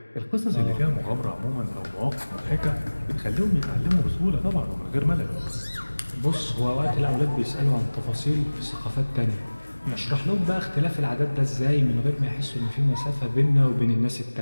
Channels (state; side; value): inverted; both; correlation -1.00